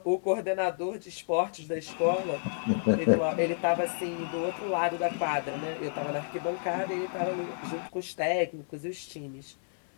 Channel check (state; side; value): silent; right; digital silence